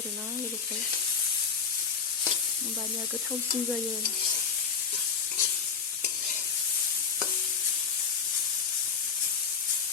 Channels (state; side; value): quieter; right; 6.0 dB